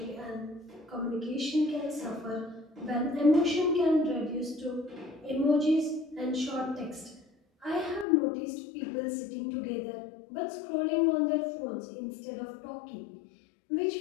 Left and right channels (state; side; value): drops out; right; at 8.1 s